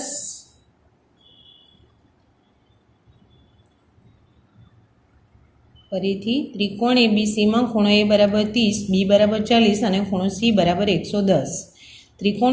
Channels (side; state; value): both; identical; correlation 1.00